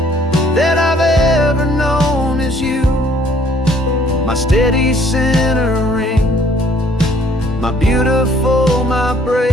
that I've ever known is you. My steady centering, my beautiful, my brave,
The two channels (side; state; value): both; normal; correlation 0.61